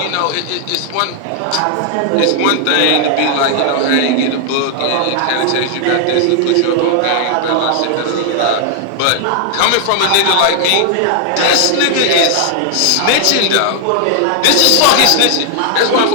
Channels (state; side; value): different; both; correlation 0.00